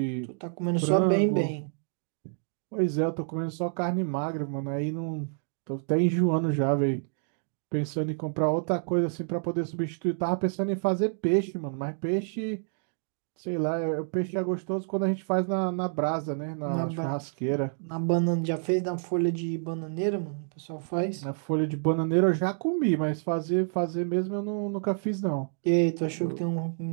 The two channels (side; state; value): left; silent; digital silence